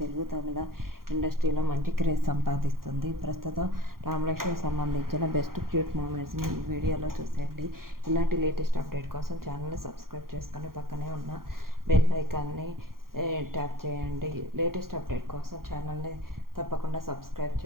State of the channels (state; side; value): late; left; 0.92 ms